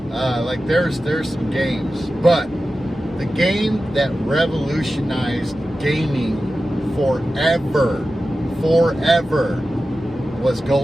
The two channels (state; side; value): normal; both; correlation 0.94